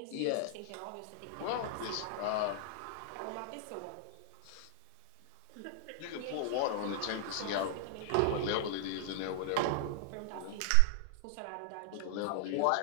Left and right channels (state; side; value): different; both; correlation -0.01